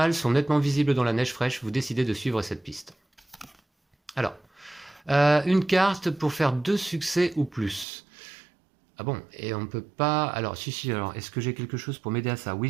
sont nettement visibles dans la neige fraîche, vous décidez de suivre cette piste. Alors, une carte pour faire 2 succès ou plus. Ah bon, et on ne peut pas... Alors, si, alors, est-ce que j'ai quelque chose pour m'aider à ça? Oui,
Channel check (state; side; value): drops out; left; at 7.9 s